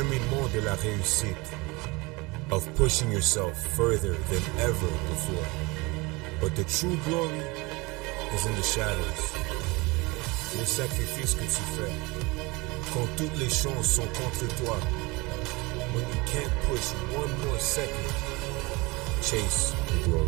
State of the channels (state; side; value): quieter; left; 24.8 dB